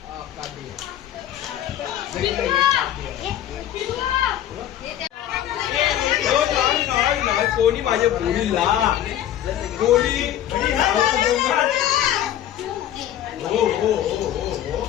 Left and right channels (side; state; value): right; quieter; 11.7 dB